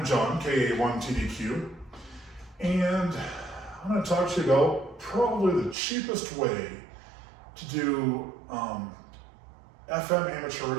John, KA1TDQ, and I'm going to talk to you about probably the cheapest way to do FM amateur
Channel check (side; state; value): left; drops out; at 5.8 s